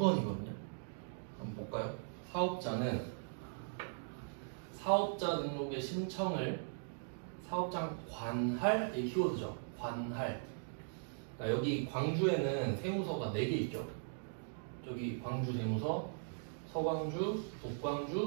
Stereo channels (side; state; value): left; silent; digital silence